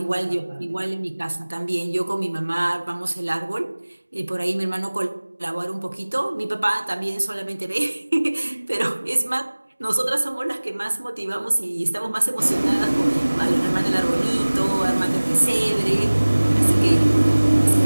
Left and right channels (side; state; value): both; inverted; correlation -1.00